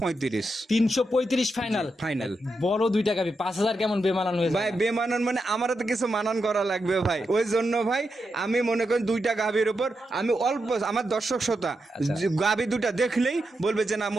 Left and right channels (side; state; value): both; normal; correlation 0.86